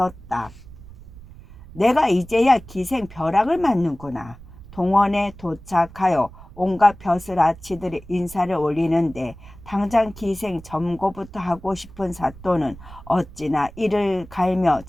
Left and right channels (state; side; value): noise; right; rumble, 18 dB below the sound